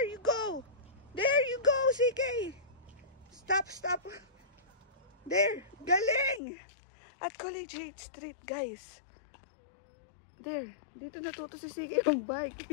go. There you go, CK. Stop. There, galing. At Collegiate Street, guys. There, dito natuto si CK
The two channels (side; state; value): right; drops out; at 6.4 s